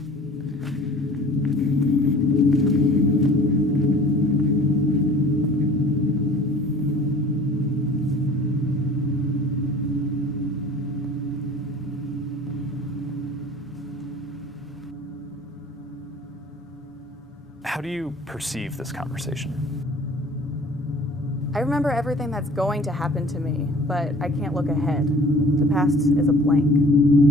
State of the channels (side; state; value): both; normal; correlation 0.47